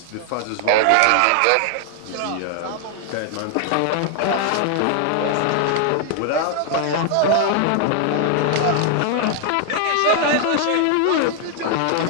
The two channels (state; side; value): different; both; correlation 0.00